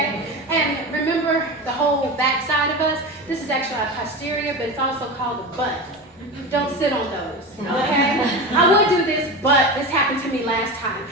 And remember the whole back side of us? This is actually our posterior, but it's also called the butt. Don't sit on those, okay? I would do this, but this happened to me last time.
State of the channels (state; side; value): normal; both; correlation 0.25